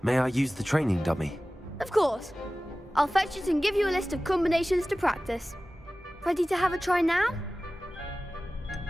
May I use the training dummy? Of course. I'll fetch it and give you a list of combinations to practice. Ready to have a try now?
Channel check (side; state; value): both; normal; correlation 0.97